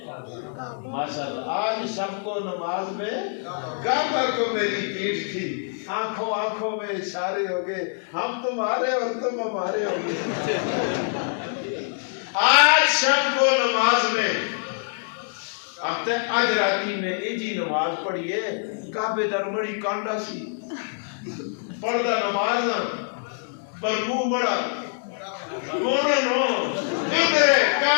ماشاءاللہ آج شب کو نماز میں کعبہ کو میری پیٹھ تھی آنکھوں آنکھوں میں اشارے ہو گئے ہم تمہارے اور تم ہمارے ہو گئے آج شب کو نماز میں اب تے آج راتی میں ایجی نماز پڑھیے کعبے در بڑی کانڈا سی پردہ نماز پر منہ بڑا نو میرے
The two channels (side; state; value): right; silent; 62 dB below the other